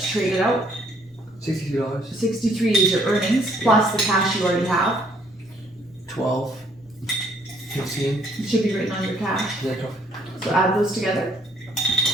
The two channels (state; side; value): normal; both; correlation 0.64